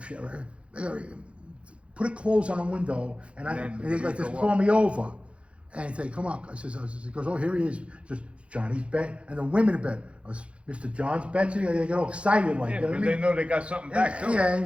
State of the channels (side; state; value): left; late; 0.060 ms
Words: shit! Put a close on the window, and they like just call me over, and he'd say, "Come on." He goes, "Oh, here he is." Just Johnny's bet, and the women bet. Mr. John's bet. They get all excited like that. Because they know they got something back too. Yeah, and